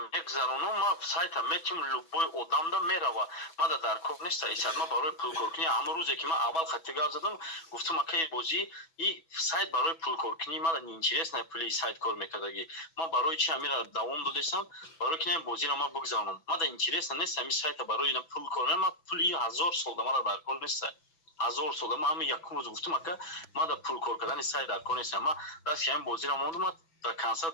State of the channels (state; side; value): late; right; 6.1 ms